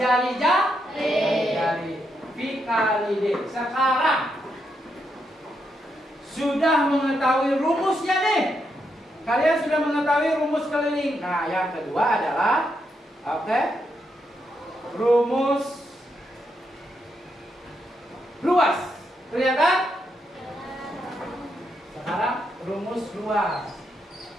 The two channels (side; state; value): both; normal; correlation 0.81